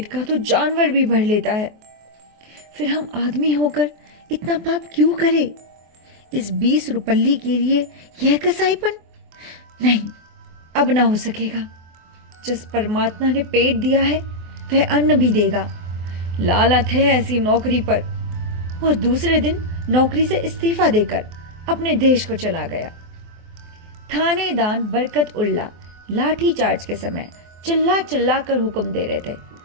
का तो जानवर भी भर लेता है, फिर हम आदमी होकर इतना पाप क्यों करे? इस 20 रुपल्ली के लिए यह कसाईपन? नहीं, अब ना हो सकेगा। जिस परमात्मा ने पेट दिया है वह अन्न भी देगा। लालत है ऐसी नौकरी पर। और दूसरे दिन नौकरी से इस्तीफा देकर अपने देश को चला गया। थानेदार बरकत उल्ला लाठी चार्ज के समय चिल्ला चिल्ला कर हुक्म दे रहे थे,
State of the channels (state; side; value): late; left; 24 ms